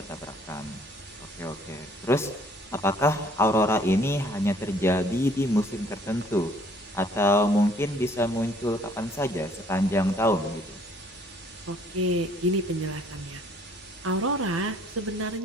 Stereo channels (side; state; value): both; normal; correlation 0.61